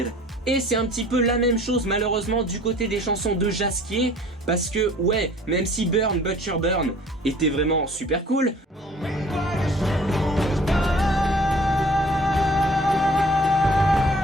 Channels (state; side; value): normal; both; correlation 0.52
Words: Et c'est un petit peu la même chose malheureusement du côté des chansons de Jaskier, parce que ouais, même si Burn Butcher Burn était vraiment super cool,